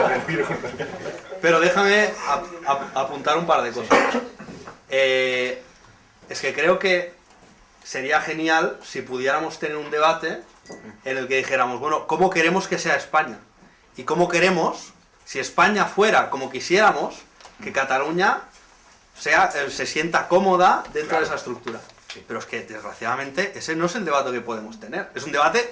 Pero déjame apuntar un par de cosas. Es que creo que sería genial si pudiéramos tener un debate en el que dijéramos, bueno, ¿cómo queremos que sea España? Y cómo queremos, si España fuera como quisiéramos, que Cataluña se sienta cómoda dentro de esa estructura. Pero es que, desgraciadamente, ese no es el debate que podemos tener. Es un debate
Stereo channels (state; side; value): identical; both; correlation 1.00